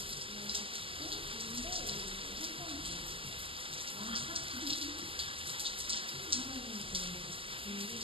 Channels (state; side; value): late; left; 0.26 ms